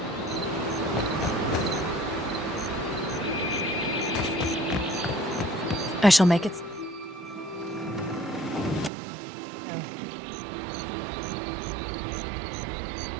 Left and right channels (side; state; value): left; drops out; at 8.9 s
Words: I shall make it.